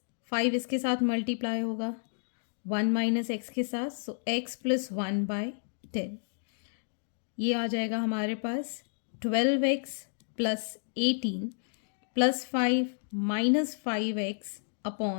5 इसके साथ मल्टीप्लाई होगा 1 माइनस एक्स के साथ. So x plus 1 by 10. ये आ जाएगा हमारे पास 12x plus 18 plus 5 minus 5x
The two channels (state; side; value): silent; right; digital silence